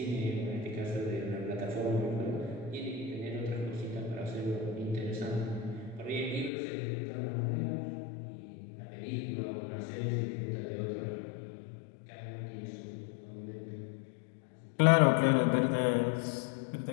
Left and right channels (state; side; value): drops out; right; at 6.5 s